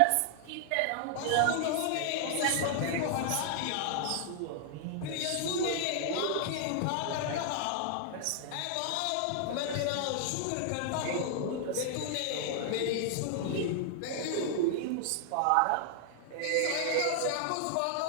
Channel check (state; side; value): different; both; correlation 0.00